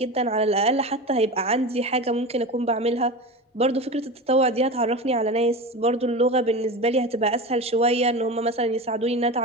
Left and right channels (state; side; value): normal; both; correlation 0.27